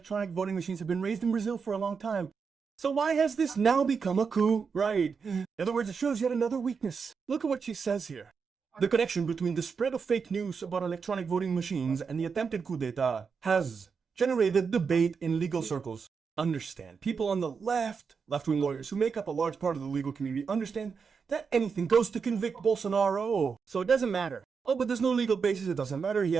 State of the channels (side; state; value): left; quieter; 5.7 dB